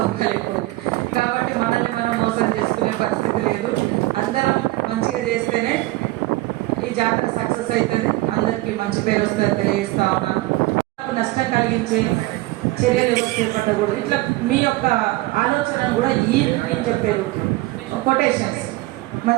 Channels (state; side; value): quieter; left; 19.8 dB